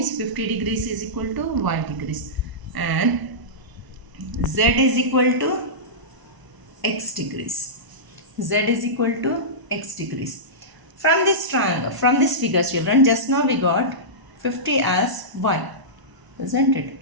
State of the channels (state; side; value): late; left; 1.0 ms